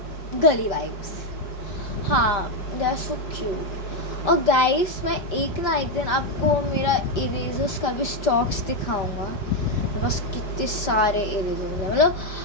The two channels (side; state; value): right; late; 5.1 ms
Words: गली वाइब्स, हाँ दे आर सो क्यूट। और गाइस मैं एक दिन आपको मेरा इरेजर्स का भी स्टॉक्स दिखाऊंगा। मेरे पास कितने सारे इरेजर्स हैं,